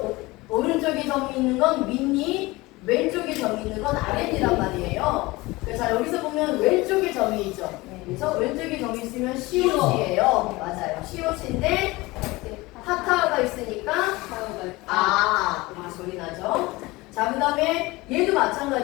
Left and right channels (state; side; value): quieter; right; 21.5 dB